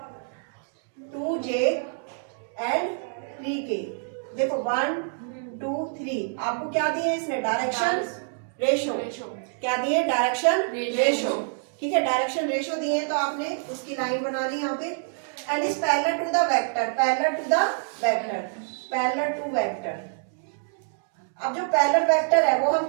2j and 3k। देखो 1, 2, 3 आपको क्या दिए इसने, डायरेक्शन रेशो, क्या दिए, डायरेक्शन रेशो। ठीक है, डायरेक्शन रेशो दिए तो आपने उसकी लाइन बना ली यहाँ पे। And is parallel to the vector, parallel to vector. अब जो पैरेलल वेक्टर है वो हम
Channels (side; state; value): left; silent; digital silence